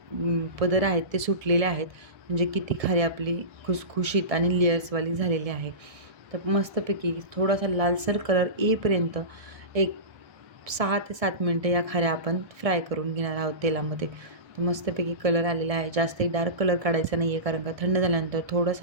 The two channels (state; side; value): late; left; 1.7 ms